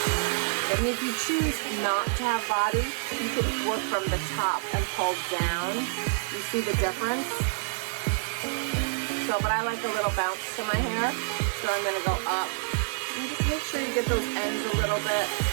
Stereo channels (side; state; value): left; silent; digital silence